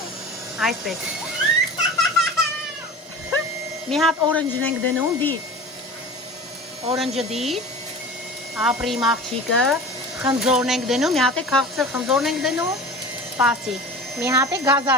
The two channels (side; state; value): both; normal; correlation 0.36